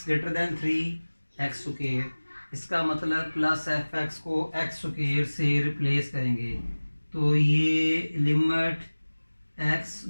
greater than 3 x square. इसका मतलब प्लस एफ एक्स को एक्स स्क्वायर से रिप्लेस करेंगे। तो ये लिमिट x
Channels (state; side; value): inverted; both; correlation -1.00